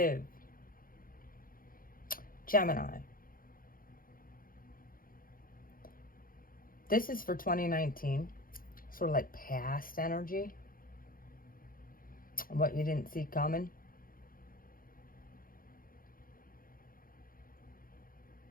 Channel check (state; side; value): late; right; 0.41 ms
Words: Gemini. This is for 2019, sort of like past energy, what you didn't see coming.